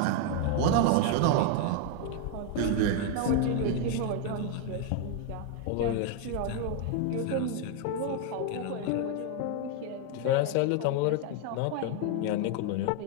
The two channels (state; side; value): different; both; correlation 0.00